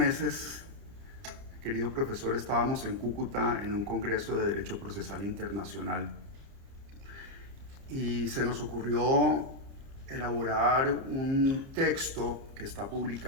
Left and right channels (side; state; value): left; late; 30 ms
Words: querido profesor, estábamos en Cúcuta en un congreso de Derecho Procesal Internacional y se nos ocurrió elaborar un texto que está